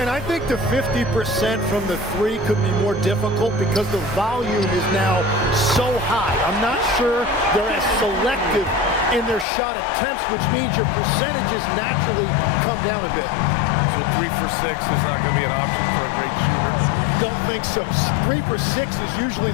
I think the 50% from the 3 could be more difficult because the volume is now so high. I'm not sure they're as selective in their shot attempts, which means your percentages naturally come down a bit. So 3 for 6 is not going to be an option for a great shooter? Don't think so. 3 for 6 is usually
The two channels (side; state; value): right; drops out; at 9.5 s